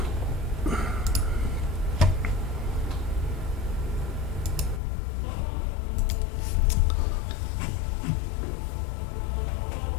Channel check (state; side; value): drops out; right; at 4.8 s